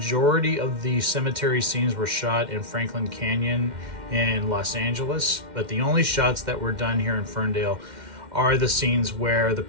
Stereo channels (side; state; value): left; late; 2.1 ms